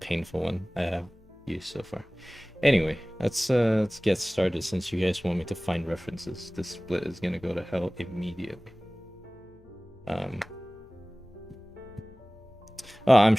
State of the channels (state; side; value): noise; left; hum, 28 dB below the sound